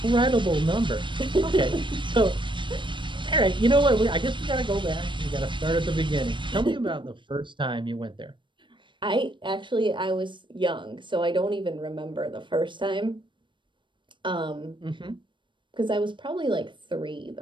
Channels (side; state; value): left; late; 0.23 ms